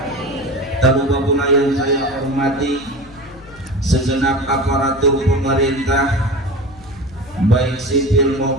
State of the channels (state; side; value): noise; left; hum, 22 dB below the sound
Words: Tak lupa pula yang saya hormati segenap aparatur pemerintah, baik sipil